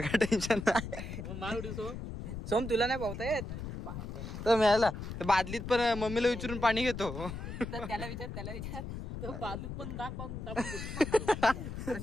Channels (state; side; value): noise; left; rumble, 7 dB below the sound